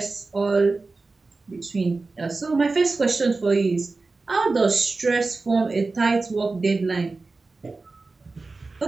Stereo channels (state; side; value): quieter; left; 3.7 dB